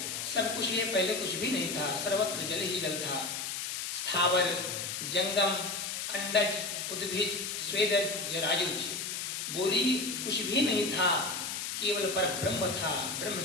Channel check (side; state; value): left; noise; hiss, 4 dB below the sound